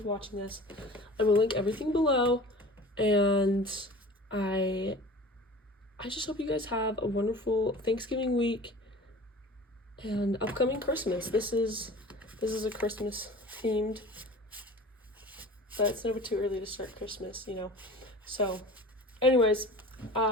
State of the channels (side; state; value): both; normal; correlation 0.41